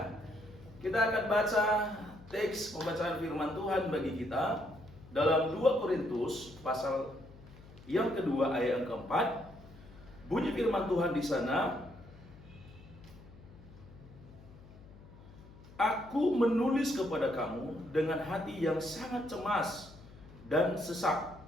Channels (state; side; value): noise; left; hum, 20 dB below the sound